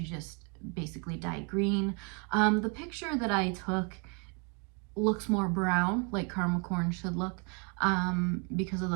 just basically dye green. The picture that I took looks more brown, like caramel corn should look, because of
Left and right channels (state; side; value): quieter; left; 34.7 dB